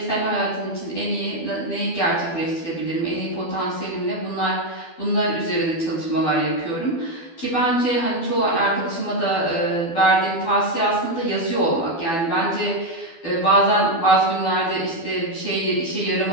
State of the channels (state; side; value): late; right; 12 ms